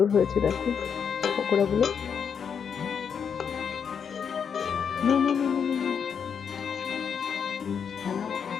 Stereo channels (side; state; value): right; quieter; 7.0 dB